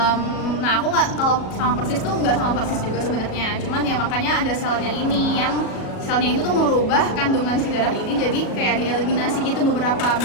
Nah, aku nggak, kalau sama persis tuh nggak sama persis juga sebenarnya. Cuman ya makanya ada selnya ini yang selnya itu tuh merubah kandungan si darah ini jadi kayak dieliminasi gitu beberapa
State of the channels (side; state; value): right; late; 37 ms